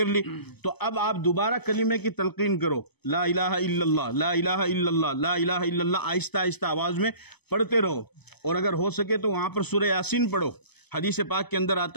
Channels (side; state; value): right; late; 0.99 ms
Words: لی. تو اب آپ دوبارہ کلمے کی تلقین کرو، لا الہ الا اللہ، لا الہ الا اللہ، لا الہ الا اللہ، آہستہ آہستہ آواز میں پڑھتے رہو. اور اگر ہو سکے تو وہاں پر سورہ یاسین پڑھو. حدیث پاک کے اندر